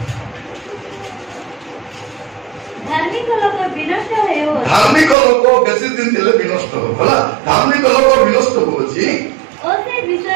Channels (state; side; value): drops out; left; at 5.2 s